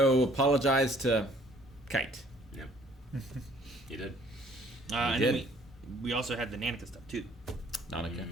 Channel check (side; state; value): both; normal; correlation 0.58